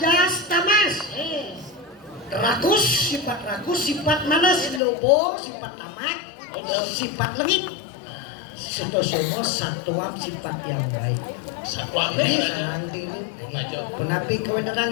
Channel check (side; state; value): right; drops out; at 4.8 s